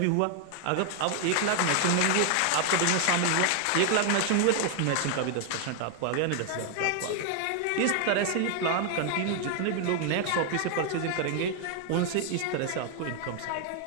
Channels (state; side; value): different; both; correlation 0.00